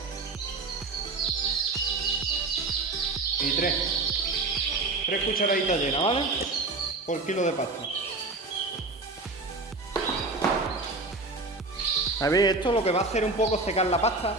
y 3. 3 cucharaditas llenas, ¿vale? Por kilo de pasta. A ver, esto lo que va a hacer un poco secar la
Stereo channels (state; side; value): quieter; left; 3.4 dB